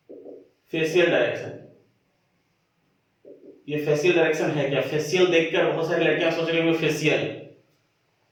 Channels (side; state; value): both; identical; correlation 1.00